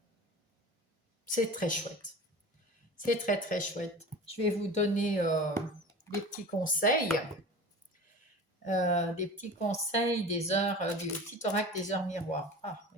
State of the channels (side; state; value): both; normal; correlation 0.36